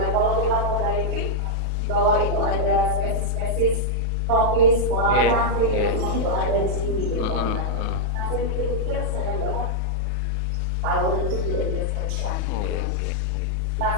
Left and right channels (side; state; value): left; late; 27 ms